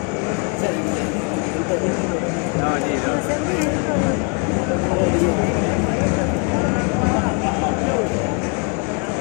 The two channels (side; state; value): right; quieter; 36.8 dB